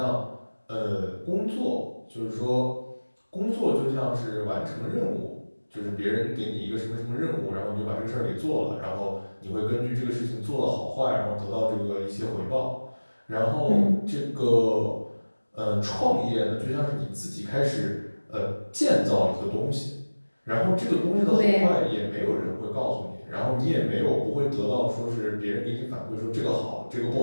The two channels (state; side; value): inverted; both; correlation -1.00